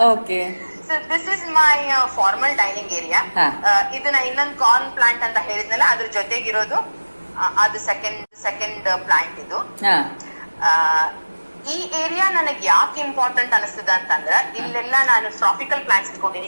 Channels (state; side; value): inverted; both; correlation -1.00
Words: Okay. So this is my formal dining area. ಇದನ್ನ ಇನ್ನೊಂದು corn plant ಅಂತ ಹೇಳಿದ್ನಲ್ಲ, ಅದ್ರ ಜೊತೆಗಿರೋದು ಅದು ಸೆಕೆಂಡ್ ಪ್ಲಾಂಟ್ ಇದು. ಈ area ನನಗೆ ಯಾಕೆ ಇಂಪಾರ್ಟೆಂಟ್ ಅನಿಸ್ತದ ಅಂತಂದ್ರ, ಇಲ್ಲೆಲ್ಲ ನಾನು ಟ್ರಾಪಿಕಲ್ ಪ್ಲಾಂಟ್ಸ್ ಇಟ್ಕೊಂಡಿನಿ.